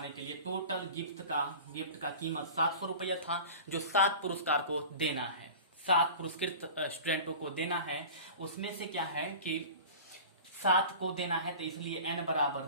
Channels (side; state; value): both; inverted; correlation -0.37